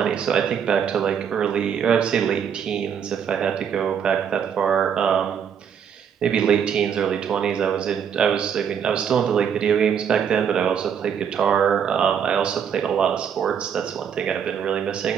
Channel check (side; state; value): left; quieter; 7.8 dB